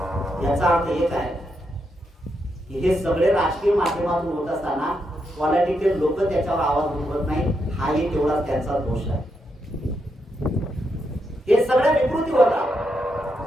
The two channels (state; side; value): normal; both; correlation 0.82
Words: याचा अर्थ एक आहे की हे सगळे राजकीय माध्यमातून होत असताना पॉलिटिकल लोक त्याच्यावर आवाज उठवत नाही. हाही तेवढाच त्यांचा दोष आहे. हे सगळ्या विकृती होता.